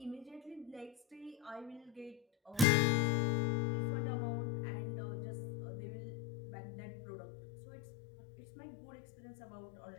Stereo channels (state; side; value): drops out; right; at 2.7 s